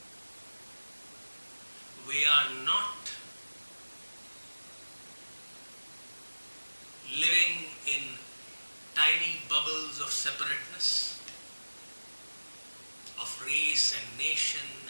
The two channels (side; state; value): both; inverted; correlation -1.00